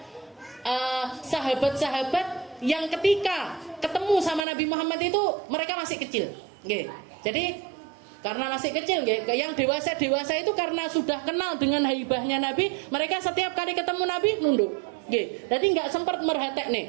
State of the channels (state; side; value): drops out; left; at 4.5 s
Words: sahabat-sahabat yang ketika ketemu sama Nabi Muhammad itu mereka masih kecil. Jadi karena masih kecil, yang dewasa itu karena sudah kenal dengan haibahnya Nabi, mereka setiap kali ketemu Nabi nunduk. Jadi nggak sempat merhatek